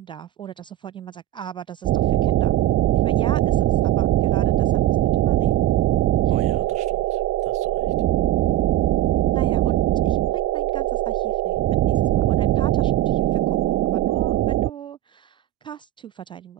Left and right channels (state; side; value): quieter; left; 13.7 dB